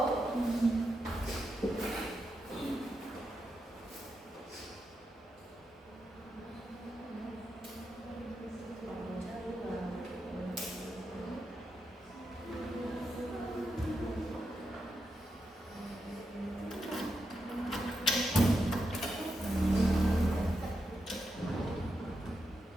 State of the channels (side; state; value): both; normal; correlation 0.86